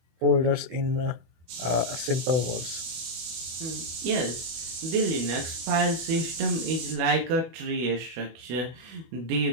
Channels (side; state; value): left; late; 24 ms